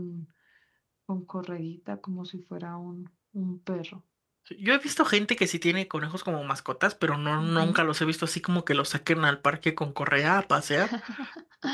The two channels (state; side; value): identical; both; correlation 1.00